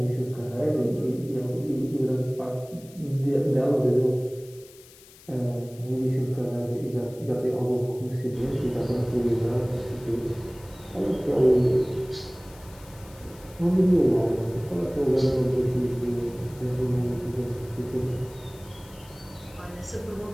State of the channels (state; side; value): noise; left; hiss, 23 dB below the sound